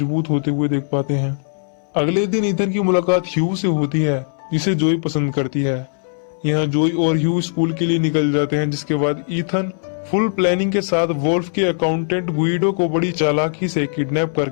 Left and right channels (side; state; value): right; silent; 63 dB below the other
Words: होते हुए देख पाते हैं। अगले दिन ईथन की मुलाकात ह्यू से होती है जिसे जोई पसंद करती है। यहाँ जोई और ह्यू स्कूल के लिए निकल जाते हैं, जिसके बाद ईथन फुल प्लानिंग के साथ वोल्फ के अकाउंटेंट गुइडो को बड़ी चालाकी से किडनैप